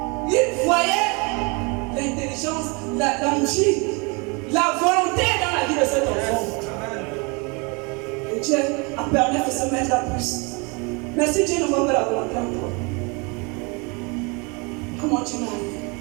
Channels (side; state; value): left; quieter; 30.2 dB